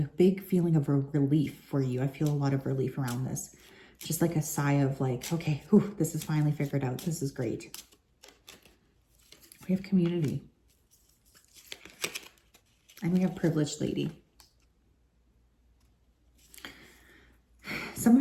big feeling of a relief for you. I feel a lot of relief around this. Just like a sigh of like, okay, whew, this is finally figured out. This is great. We have community. And we have privileged lady. Some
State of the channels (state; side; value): identical; both; correlation 1.00